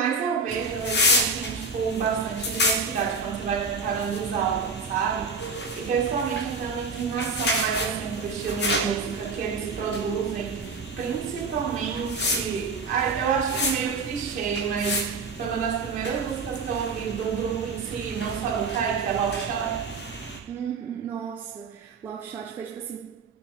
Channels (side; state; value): left; quieter; 3.8 dB